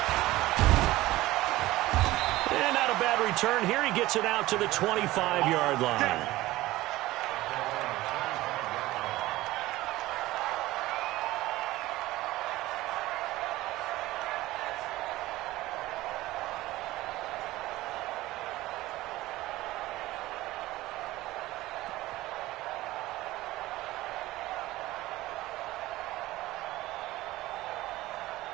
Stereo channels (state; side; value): quieter; left; 17.5 dB